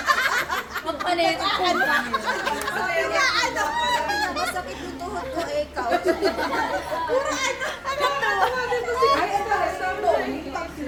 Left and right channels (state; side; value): identical; both; correlation 1.00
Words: Magpalit ko pa. Sabi nga, ano? Masakit yung tuhod ko eh, ikaw. Puro ano? Ay, ito, ito.